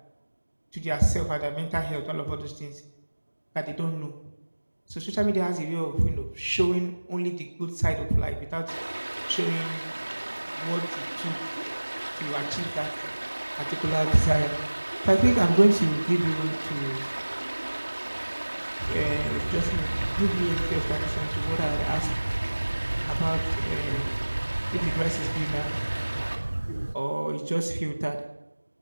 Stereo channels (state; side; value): inverted; both; correlation -1.00